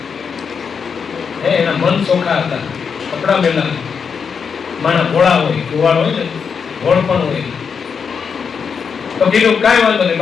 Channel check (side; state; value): right; quieter; 6.3 dB